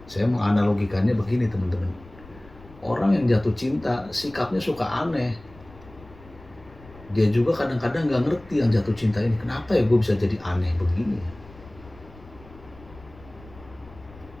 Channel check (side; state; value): left; noise; rumble, 21 dB below the sound